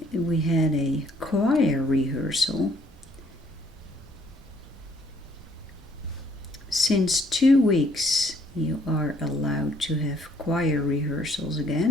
choir rehearsal. Since 2 weeks you are allowed to have choir rehearsals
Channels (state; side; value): normal; both; correlation 0.64